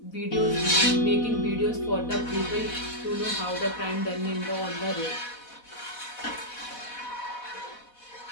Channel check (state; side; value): late; right; 4.1 ms